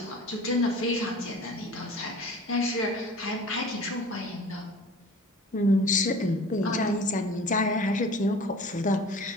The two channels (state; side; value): normal; both; correlation 0.42